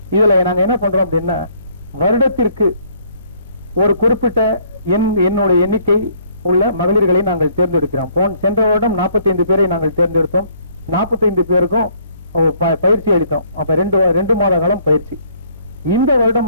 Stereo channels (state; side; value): inverted; both; correlation -0.62